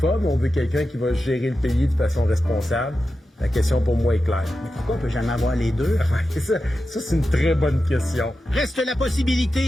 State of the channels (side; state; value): both; normal; correlation 0.91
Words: ou on veut quelqu'un qui va gérer le pays de façon responsable? La question pour moi est claire. Mais pourquoi on peut jamais avoir les deux? ça, c'est une très bonne question. Reste la